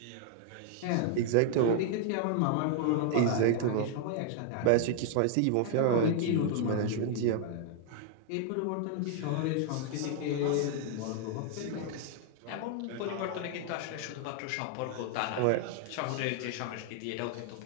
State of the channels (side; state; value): both; different; correlation 0.00